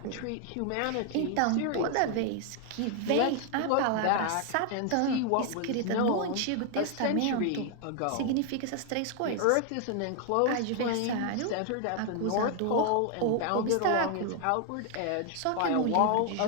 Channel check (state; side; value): different; both; correlation 0.00